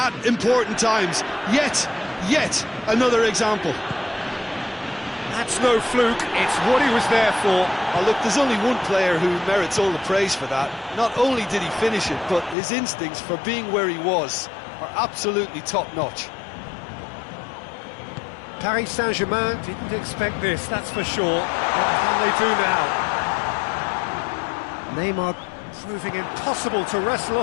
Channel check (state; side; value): drops out; right; at 12.6 s